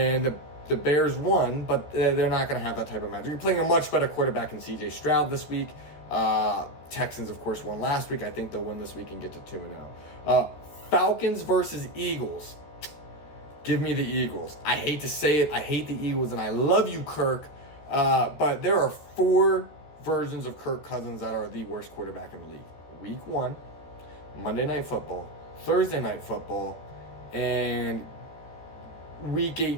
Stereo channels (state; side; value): late; right; 14 ms